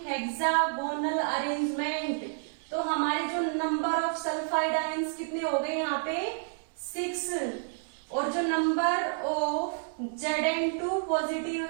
hexagonal arrangement. तो हमारे जो नंबर ऑफ सल्फाइड आयंस कितने हो गए यहाँ पे? 6। और जो नंबर ऑफ Zn2 पॉजिटिव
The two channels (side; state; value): left; silent; digital silence